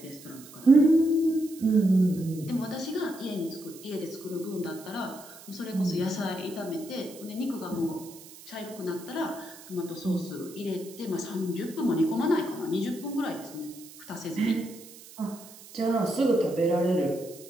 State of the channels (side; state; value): right; noise; hiss, 18 dB below the sound